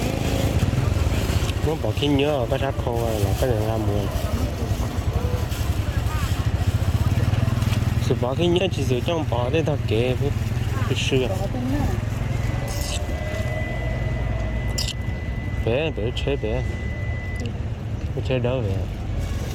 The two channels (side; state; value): both; identical; correlation 1.00